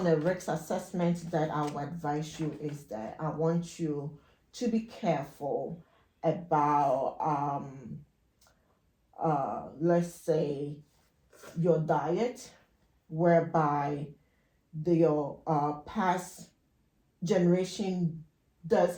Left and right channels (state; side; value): identical; both; correlation 1.00